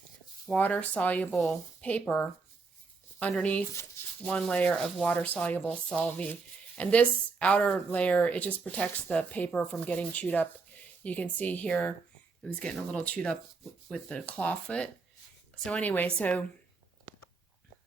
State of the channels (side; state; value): left; quieter; 4.4 dB